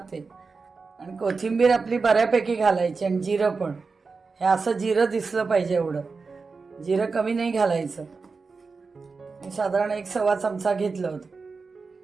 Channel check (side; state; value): left; quieter; 4.5 dB